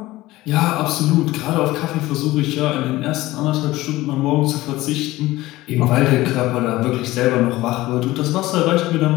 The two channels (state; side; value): quieter; right; 17.8 dB